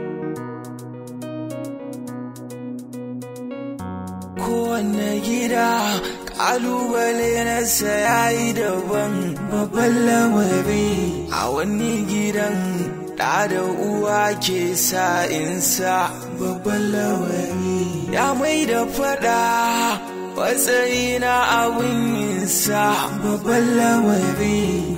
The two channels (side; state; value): both; identical; correlation 1.00